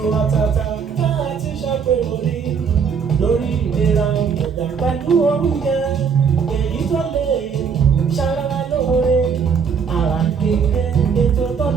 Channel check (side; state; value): left; quieter; 6.4 dB